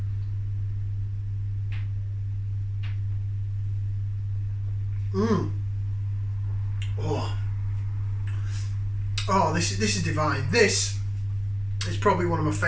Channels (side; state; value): both; identical; correlation 1.00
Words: Mmm. Oh. Oh, this is divine. This is probably one of my